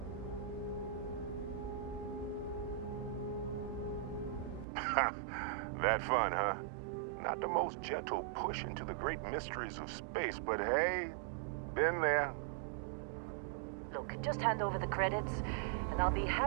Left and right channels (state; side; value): drops out; left; at 4.7 s